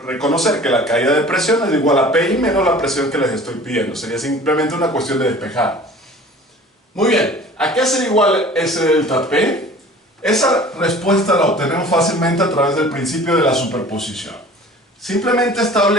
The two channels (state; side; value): normal; both; correlation 0.45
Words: reconocer que la caída de presión es igual a PI menos la presión que les estoy pidiendo. Sería simplemente una cuestión de despejar. Muy bien, ¿a qué sería igual ese delta P? Esa respuesta la obtenemos fácilmente a través del principio de la superposición. Simplemente